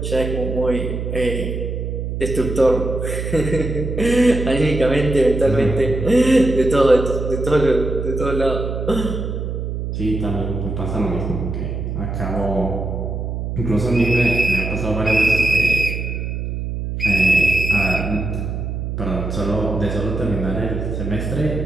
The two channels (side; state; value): right; noise; hum, 4 dB below the sound